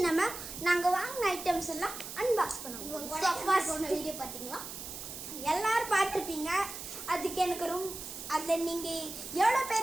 நாங்கள் வாங்கின ஐட்டம்ஸ் எல்லாம் அன்பாக்ஸ் பண்ணுவோம். வீடியோ பார்த்தீங்களா? எல்லாரும் பார்த்துருப்பீங்க. அதுக்கு எனக்கு அதில் நீங்கள் எவ்வளோ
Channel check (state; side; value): noise; right; hiss, 9 dB below the sound